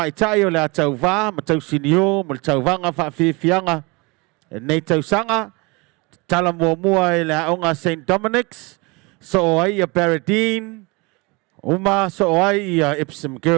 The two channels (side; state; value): left; quieter; 27.1 dB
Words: tai o le tau va ma tau sinio mo tau vanga fa fianga nei tau sanga tala mua e le aonga St. Dominic's, so ai a Paradine, uma so ai a Epsom